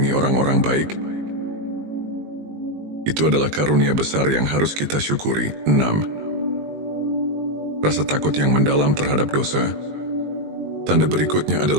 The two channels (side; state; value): left; late; 20 ms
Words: orang-orang baik, itu adalah karunia besar yang harus kita syukuri. 6. Rasa takut yang mendalam terhadap dosa. Tanda berikutnya